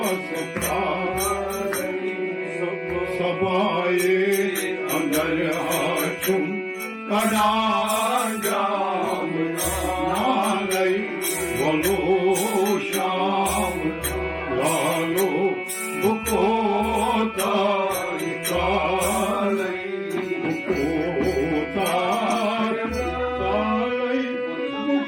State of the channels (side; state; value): both; identical; correlation 1.00